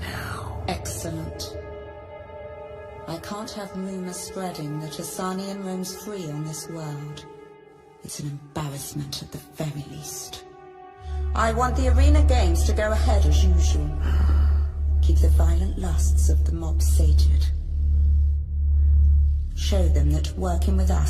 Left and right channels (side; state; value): both; identical; correlation 1.00